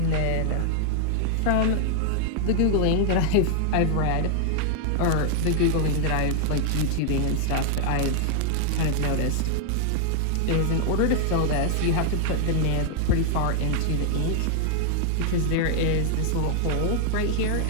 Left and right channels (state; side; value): different; both; correlation 0.00